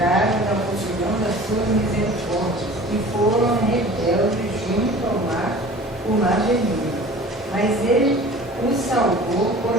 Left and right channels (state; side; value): normal; both; correlation 0.42